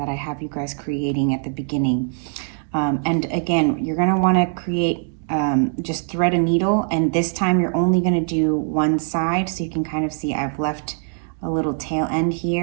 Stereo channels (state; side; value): silent; left; 64 dB below the other